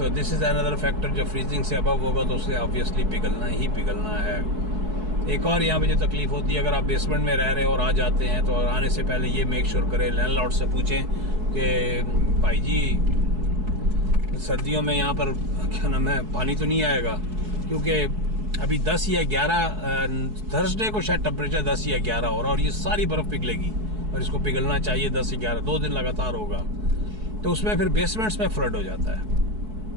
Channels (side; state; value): left; late; 4.7 ms